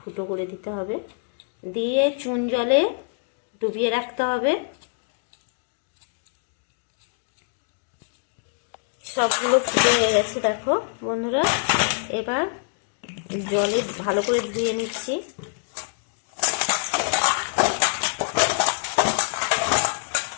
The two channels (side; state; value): right; silent; digital silence